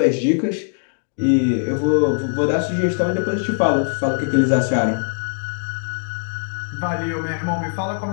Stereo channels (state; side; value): silent; right; digital silence